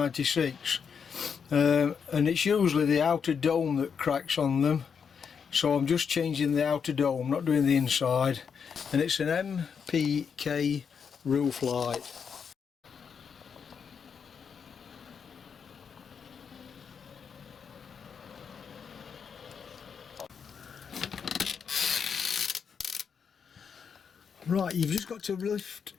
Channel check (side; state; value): right; quieter; 6.6 dB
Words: and it's usually the outer dome that cracks on them, so I'm just changing the outer dome, not doing the inside, and it's an MPK roof light. Right, you've just got to lift